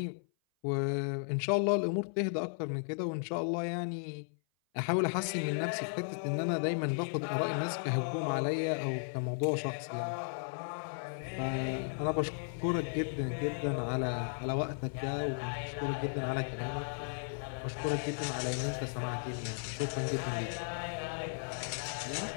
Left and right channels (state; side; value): silent; right; 54 dB below the other